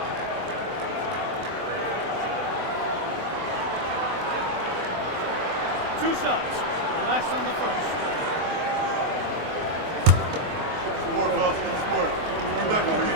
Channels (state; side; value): late; left; 24 ms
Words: 2 shots. Relax on the first.